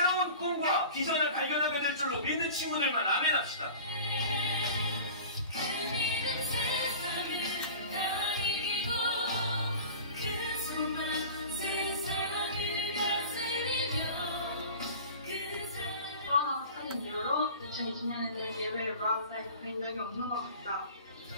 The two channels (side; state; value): both; inverted; correlation -0.40